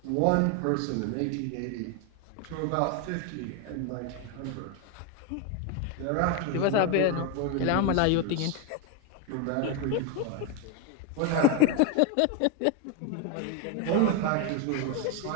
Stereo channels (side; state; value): both; different; correlation 0.01